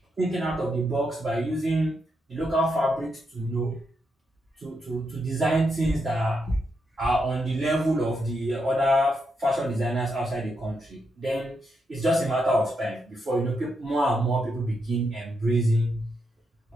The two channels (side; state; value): both; normal; correlation 0.82